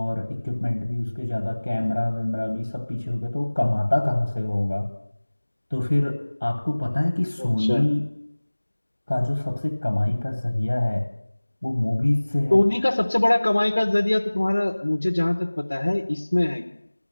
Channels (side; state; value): both; inverted; correlation -1.00